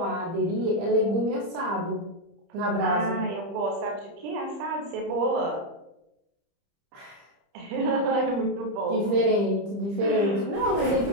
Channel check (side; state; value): left; late; 30 ms